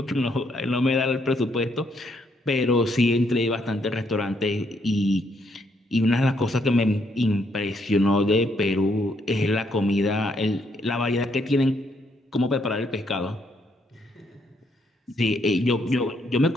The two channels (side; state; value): both; normal; correlation 0.73